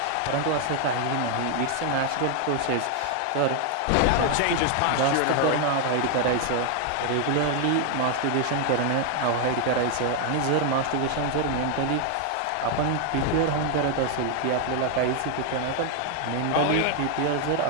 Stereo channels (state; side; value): different; both; correlation 0.00